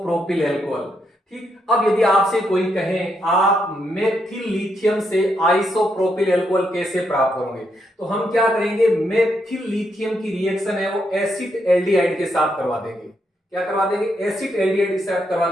अल्कोहल। ठीक, अब यदि आपसे कोई कहे आप मेथिल लिथियम से आइसोप्रोपिल अल्कोहल कैसे प्राप्त करोगे, तो हम क्या करेंगे, मेथिल लिथियम की रिएक्शन है वो एसिड एल्डिहाइड के साथ करवा देंगे। क्या करवा देंगे, एसिड एल्डिहाइड के साथ करवा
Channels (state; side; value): normal; both; correlation 0.79